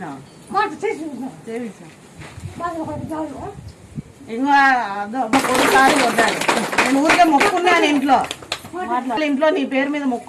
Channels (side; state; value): both; identical; correlation 1.00